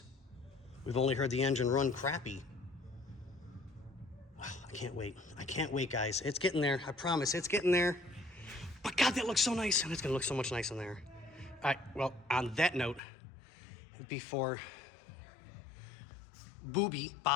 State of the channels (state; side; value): drops out; right; at 13.0 s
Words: We've only heard the engine run crappy. Oh, I can't wait. I can't wait, guys. It's getting there. I promise, it's getting there. But God, that looks so nice, and it's gonna look so much nice in there. All right, well, on that note, before